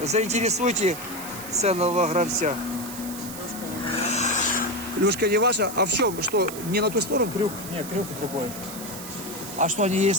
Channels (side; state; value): right; noise; hiss, 11 dB below the sound